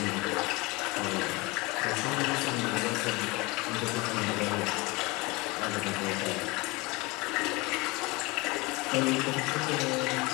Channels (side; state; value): right; quieter; 24.4 dB